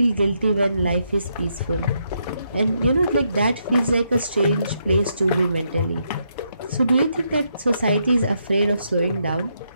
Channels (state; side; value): inverted; both; correlation -0.78